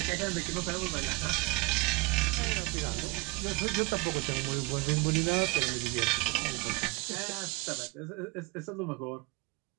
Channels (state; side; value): quieter; left; 23.8 dB